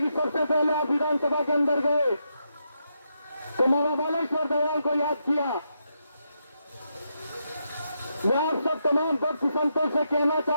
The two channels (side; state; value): both; inverted; correlation -0.83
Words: कि सबसे पहले आप विधानसभा के अंदर गए तो मामा बालेश्वर दयाल को याद किया। मैं आप सब तमाम भक्त संतों से कहना